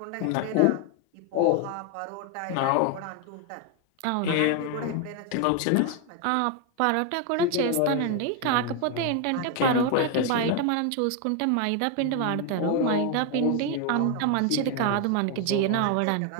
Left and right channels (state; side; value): different; both; correlation 0.01